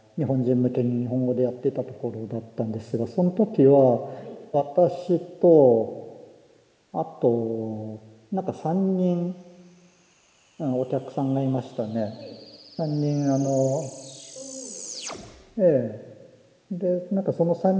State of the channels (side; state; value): both; identical; correlation 1.00